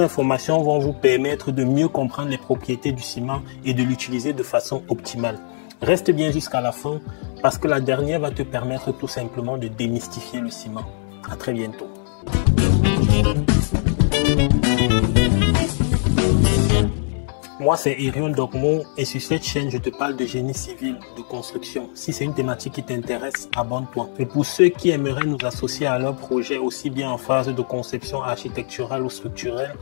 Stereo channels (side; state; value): right; silent; digital silence